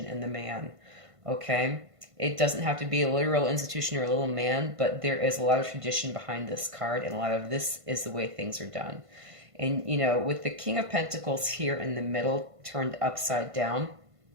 and the man, okay? It doesn't have to be a literal institution or a little man, but there is a lot of tradition behind this card, and a lot of this is the way things are done. And, you know, with the King of Pentacles here in the middle, turned upside down,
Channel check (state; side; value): late; left; 1.5 ms